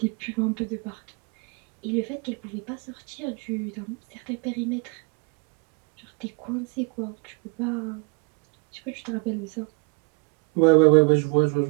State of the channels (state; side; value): quieter; left; 33.2 dB